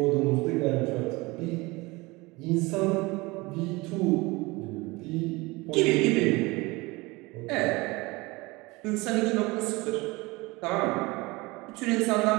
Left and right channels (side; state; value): left; quieter; 23.3 dB